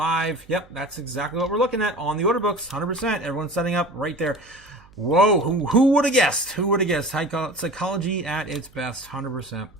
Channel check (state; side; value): noise; right; hum, 27 dB below the sound